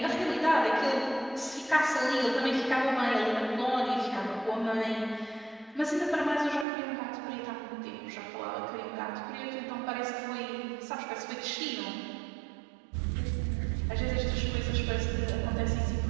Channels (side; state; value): left; drops out; at 6.7 s